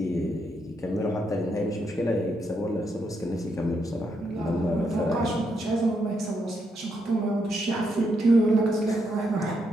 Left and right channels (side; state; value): both; normal; correlation 0.79